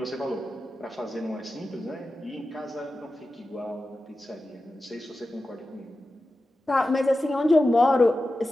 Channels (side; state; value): both; normal; correlation 0.93